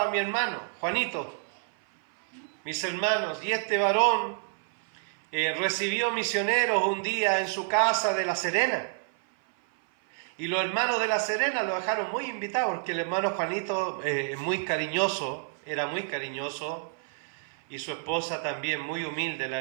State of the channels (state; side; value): silent; left; 57 dB below the other